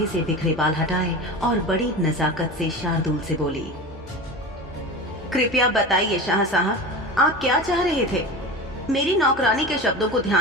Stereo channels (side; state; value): both; normal; correlation 0.29